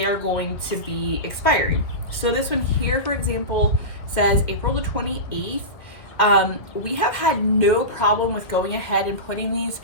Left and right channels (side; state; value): right; late; 1.7 ms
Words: going to be expiring. So this one here, for example, says April the 28th. We have had no problem with going ahead and putting these